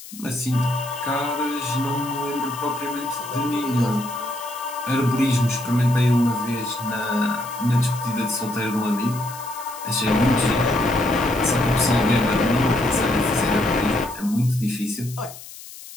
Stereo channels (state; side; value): noise; left; hiss, 15 dB below the sound